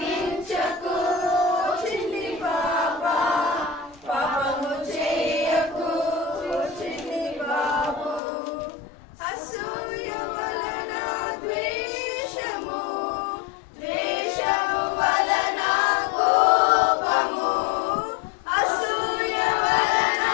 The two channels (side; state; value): right; drops out; at 8.2 s